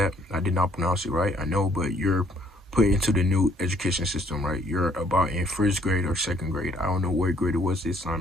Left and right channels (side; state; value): both; normal; correlation 0.64